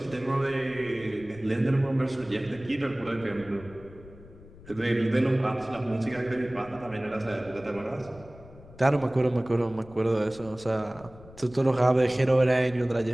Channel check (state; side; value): noise; left; rumble, 20 dB below the sound